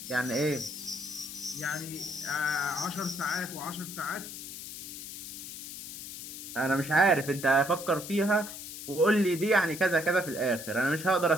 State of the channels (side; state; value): left; noise; hiss, 10 dB below the sound